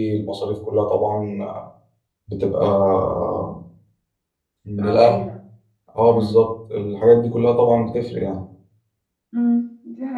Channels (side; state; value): both; identical; correlation 1.00